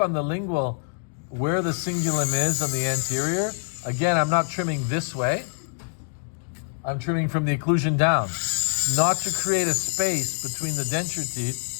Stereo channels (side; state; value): right; silent; digital silence